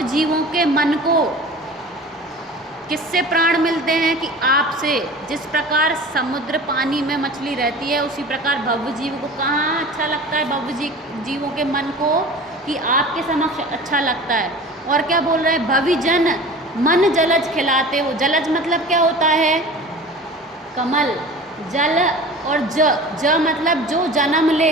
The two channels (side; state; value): both; normal; correlation 0.39